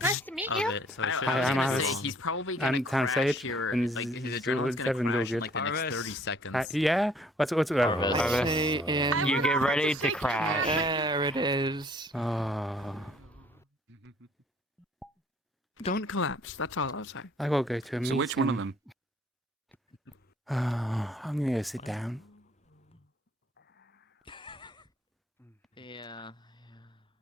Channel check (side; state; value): both; normal; correlation 0.59